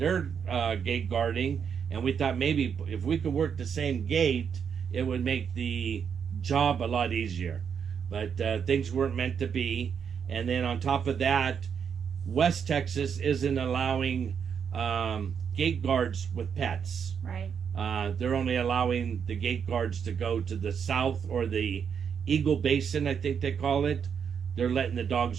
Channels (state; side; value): quieter; left; 7.2 dB